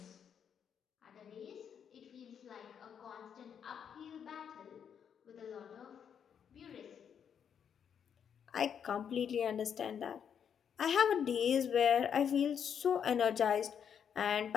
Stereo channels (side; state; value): right; quieter; 7.9 dB